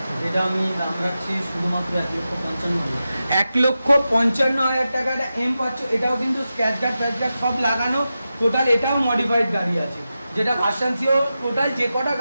এটা আমি দাম রাখছি শুধুমাত্র 1,55,000। 1,55,000 টাকা একটা এম পাচ্ছ। এটাও কিন্তু স্ক্র্যাচ গার্ড ফ্যাচ গার্ড সব লাগানো, টোটাল এটাও মডিফাইড গাড়ি আছে। যেটা ভার্সন সিও টোটাল যে কটা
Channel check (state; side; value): inverted; both; correlation -0.92